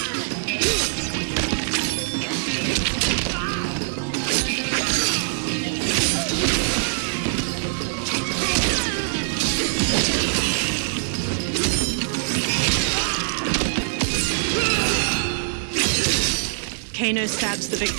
Kano stabs the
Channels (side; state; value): left; silent; digital silence